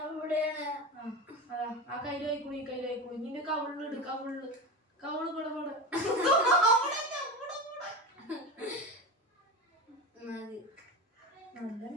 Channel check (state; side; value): normal; both; correlation 0.23